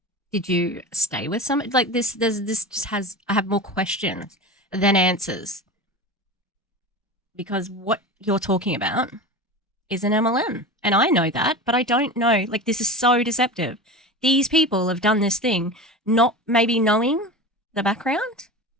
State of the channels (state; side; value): normal; both; correlation 0.29